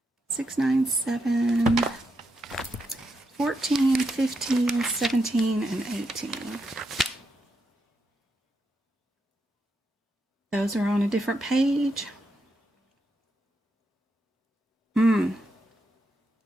6, 9, 7. 14, 15, 17, and 18. Those are on a different page.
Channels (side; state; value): both; normal; correlation 0.82